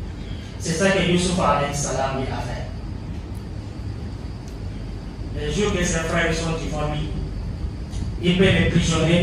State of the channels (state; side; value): identical; both; correlation 1.00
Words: C'est ça que Yusuf alayhi salam lui a fait. Les jours que ses frères sont devant lui, il peut les